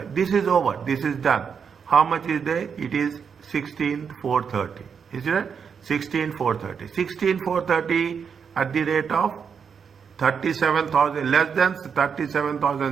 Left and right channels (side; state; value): left; quieter; 6.6 dB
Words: This is over. This is done. How much is there? It is 16,430. Is it? 16,430. 16,430 at the rate of 37,000, less than